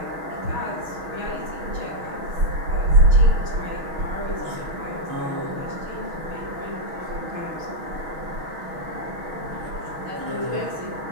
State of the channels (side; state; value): left; late; 6.2 ms